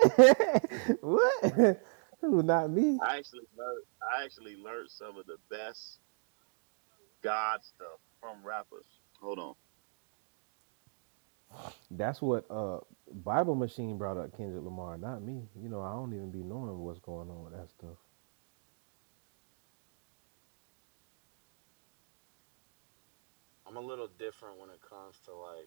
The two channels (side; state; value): left; silent; digital silence